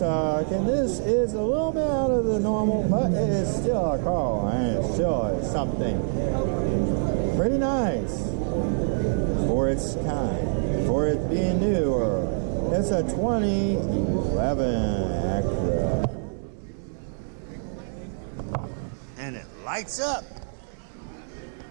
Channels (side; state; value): left; silent; digital silence